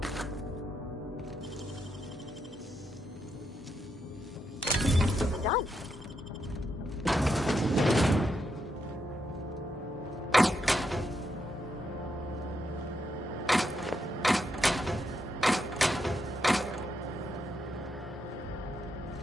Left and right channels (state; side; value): normal; both; correlation 0.81